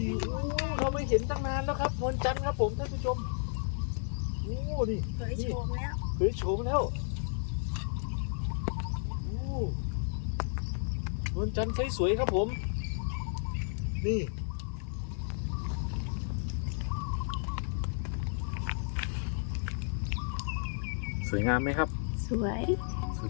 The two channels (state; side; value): silent; right; digital silence